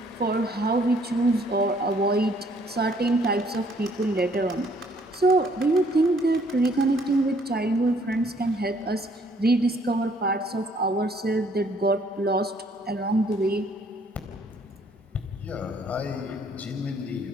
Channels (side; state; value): both; normal; correlation 0.63